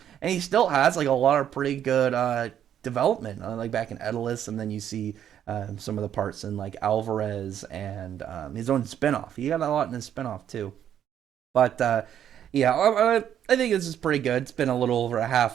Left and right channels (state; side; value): quieter; left; 9.9 dB